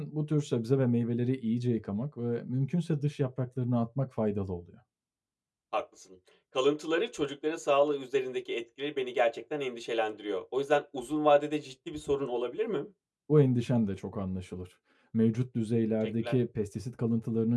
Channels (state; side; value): identical; both; correlation 1.00